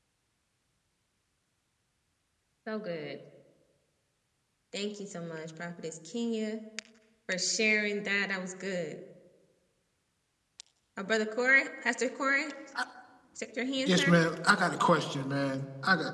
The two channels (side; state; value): both; identical; correlation 1.00